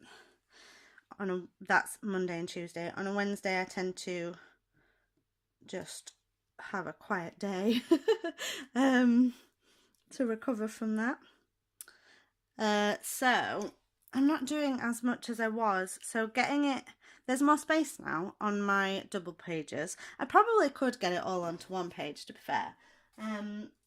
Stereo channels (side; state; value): both; identical; correlation 1.00